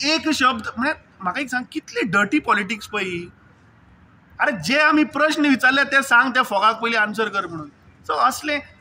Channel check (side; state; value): both; identical; correlation 1.00